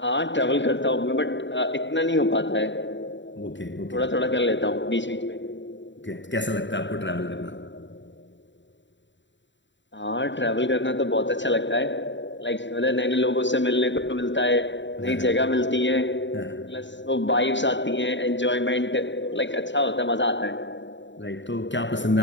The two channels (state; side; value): late; right; 0.53 ms